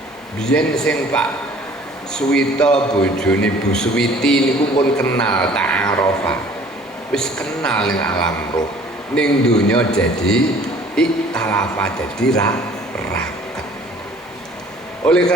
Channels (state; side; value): normal; both; correlation 0.53